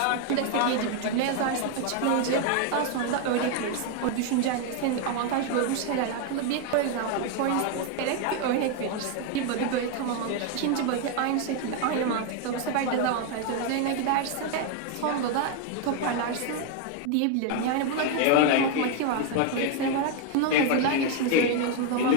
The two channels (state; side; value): different; both; correlation 0.01